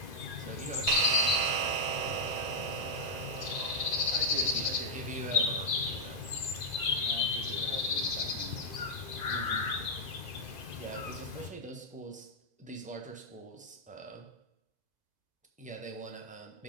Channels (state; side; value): late; left; 2.0 ms